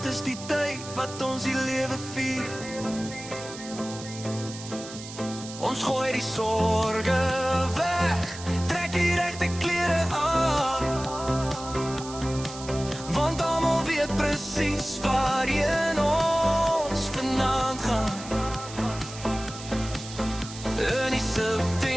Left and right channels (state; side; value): noise; right; hiss, 13 dB below the sound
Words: is die tyd wat ons die lewe vier. Ons gooi die sorge weg, trek die regte klere aan, want almal weet presies waarheen ons vanaand gaan. In die